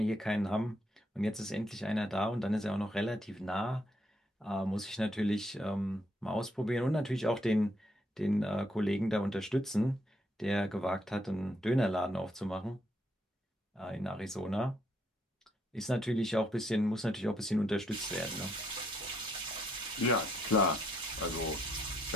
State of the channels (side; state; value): both; normal; correlation 0.73